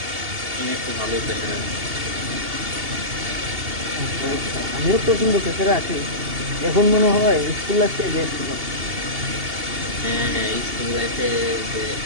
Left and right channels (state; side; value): late; left; 2.8 ms